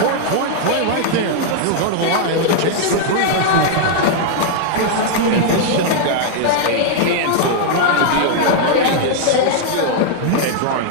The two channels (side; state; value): both; different; correlation -0.01